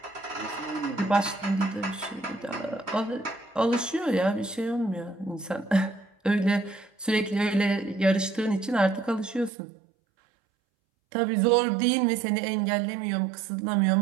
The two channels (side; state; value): left; drops out; at 9.5 s